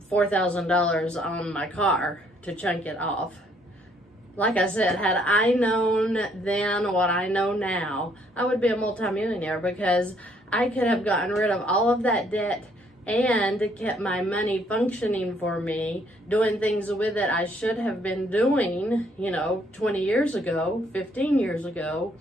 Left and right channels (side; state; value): both; normal; correlation 0.67